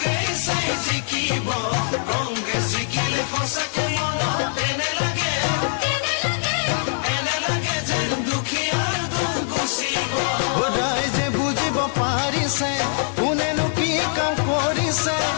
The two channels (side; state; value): right; silent; digital silence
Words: জিকিব কংগ্ৰেছ জিকিলে সঁচাকে মনত এনে লাগে যেন দুখীয়াৰ দুখ গুচিব ৰাইজে বুজিব পাৰিছে কোনেনো কি কাম কৰিছে